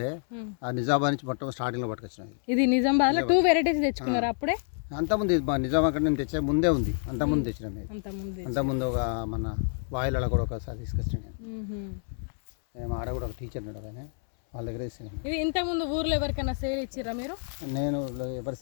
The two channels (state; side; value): silent; right; 59 dB below the other